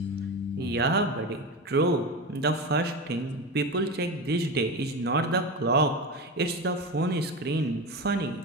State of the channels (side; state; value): both; normal; correlation 0.23